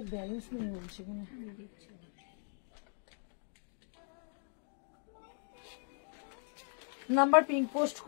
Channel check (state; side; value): silent; right; 52 dB below the other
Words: ব্যালেন্স নেই বলছে কিনা। নাম্বার পিঙ্ক পোস্ট